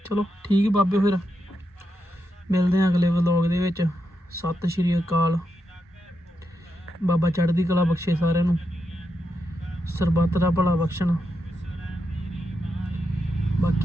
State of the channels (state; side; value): normal; both; correlation 0.85